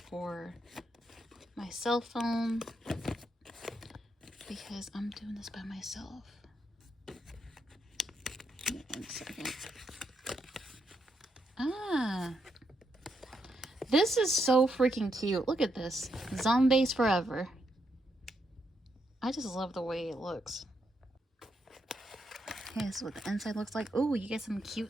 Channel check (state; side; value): normal; both; correlation 0.80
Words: for my cell phone because I'm doing this by myself. Give me 1 second. This is so freaking cute. Look at this. Zombaes forever. I just love the way it looks. Okay, this is what the inside looks like. Oh, you get some